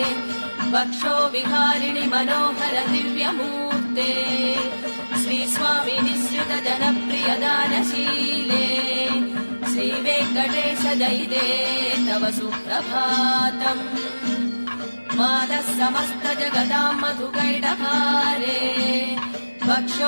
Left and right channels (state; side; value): inverted; both; correlation -1.00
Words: वक्षो विहारिणि मनोहर दिव्यमूर्ते श्रीस्वामि निःसृत जनप्रिय दानशीले श्रीवेङ्कटेश जयिते तव सुप्रभातम् मादः समस्त जगताम् मधुकैटभारे